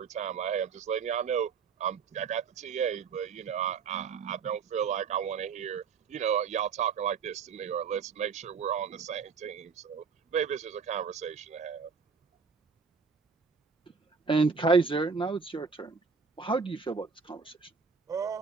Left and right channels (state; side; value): quieter; left; 5.6 dB